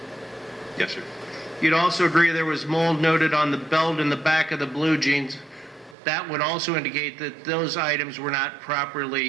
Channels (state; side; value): drops out; left; at 6.0 s